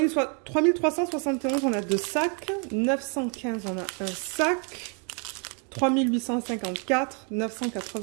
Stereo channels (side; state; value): left; quieter; 38.6 dB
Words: on a 2 sacs. 915, on a 1 sac. 3854,